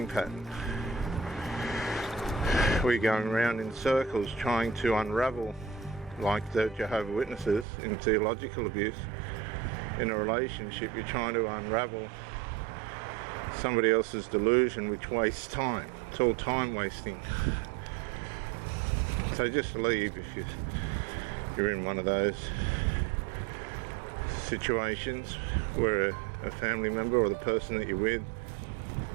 pattern. We're going around in circles trying to unravel, like the Jehovah's Witnesses in theological abuse. In a relationship, you're trying to unravel somebody else's delusion, which wastes time. It's all time wasting. So just leave if you're in one of those situations where a family member or the person that you're with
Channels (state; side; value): drops out; left; at 7.7 s